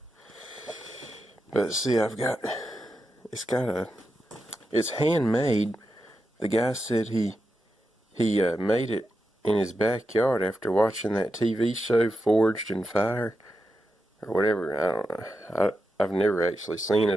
But see, it's handmade. The guy said he made it in his backyard after watching that TV show Forged in Fire or whatever. I don't know. I've never actually seen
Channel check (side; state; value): both; normal; correlation 0.88